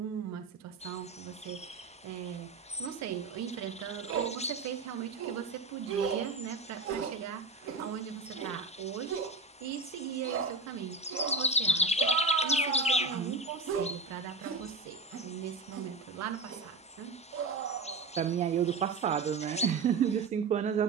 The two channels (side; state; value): left; quieter; 3.7 dB